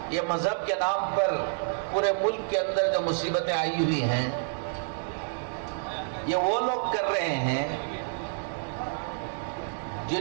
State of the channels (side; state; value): left; silent; 59 dB below the other